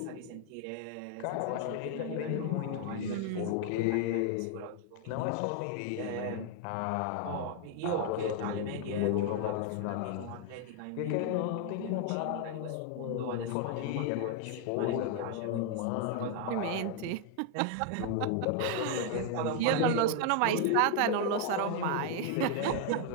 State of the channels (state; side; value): different; both; correlation 0.00